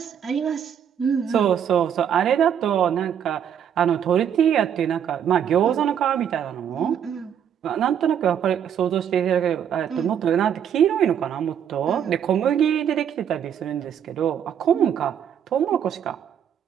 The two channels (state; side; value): quieter; left; 8.8 dB